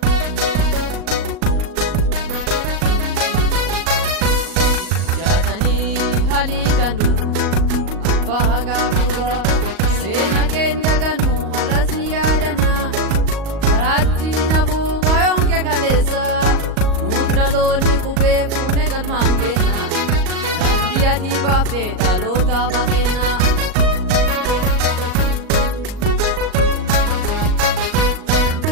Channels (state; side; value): late; left; 38 ms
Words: Jatani halitanu abba hagafuga sena kenda ganu harasi yadana karati nabuga yonke kalesa nutraloni kube fune galmangena dandi ati bafte talota pakena